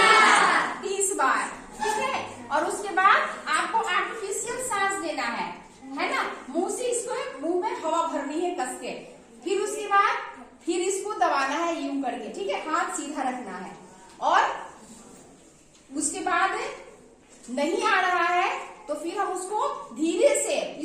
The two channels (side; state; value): both; identical; correlation 1.00